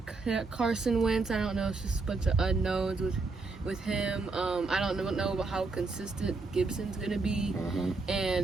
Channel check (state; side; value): quieter; left; 3.8 dB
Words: Carson Wentz. I don't know. It's just a bunch of unknowns with him. I don't know about how consistent Gibson's gonna be,